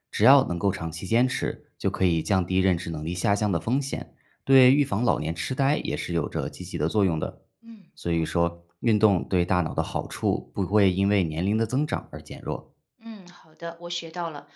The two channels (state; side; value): identical; both; correlation 1.00